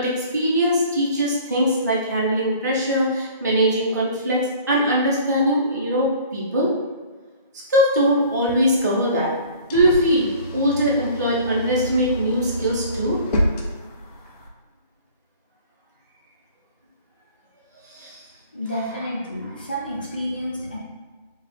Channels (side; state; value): both; inverted; correlation -0.48